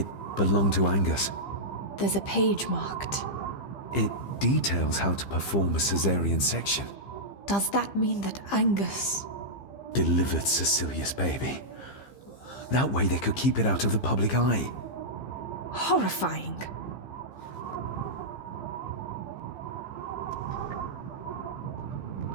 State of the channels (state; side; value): late; right; 15 ms